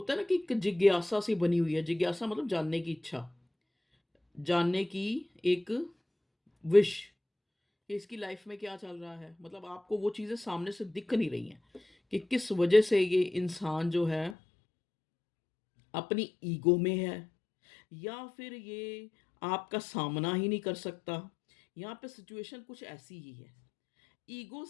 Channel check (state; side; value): drops out; right; at 14.4 s